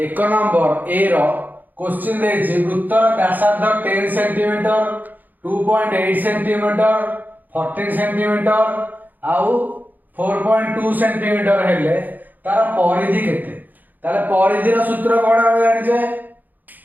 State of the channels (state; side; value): late; left; 0.084 ms